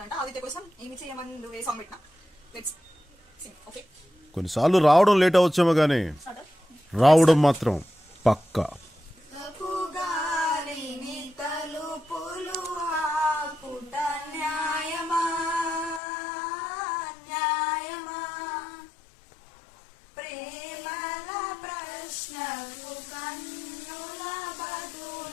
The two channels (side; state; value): right; drops out; at 16.0 s